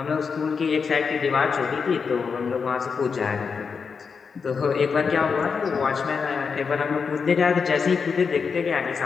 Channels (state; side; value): quieter; right; 5.6 dB